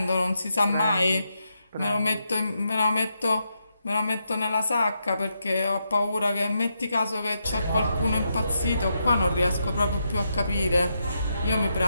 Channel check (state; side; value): inverted; both; correlation -0.83